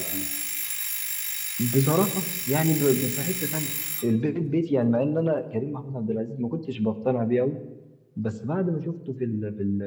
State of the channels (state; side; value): identical; both; correlation 1.00